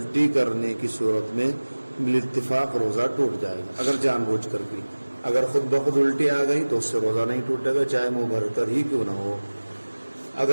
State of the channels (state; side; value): inverted; both; correlation -1.00